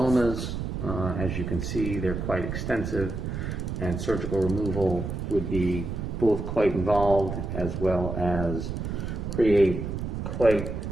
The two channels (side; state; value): right; noise; rumble, 4 dB below the sound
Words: As you can see, they're quite extensive, and surgical removal would be both quite involved as well as create quite